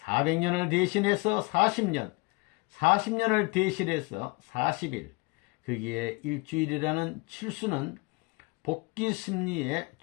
대신해서 40년, 40년을 대신해서 40일, 거기에 일주일이라는 칠수는 복귀 심리의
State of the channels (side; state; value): right; quieter; 27.0 dB